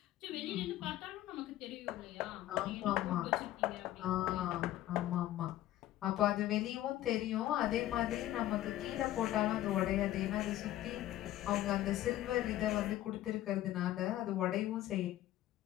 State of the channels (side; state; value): right; quieter; 14.2 dB